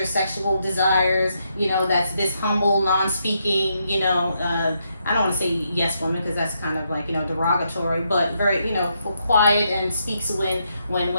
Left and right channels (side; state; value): both; inverted; correlation -0.79